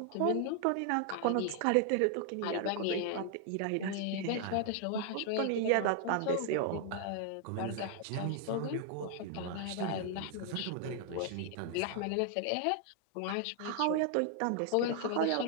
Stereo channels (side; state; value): both; different; correlation 0.00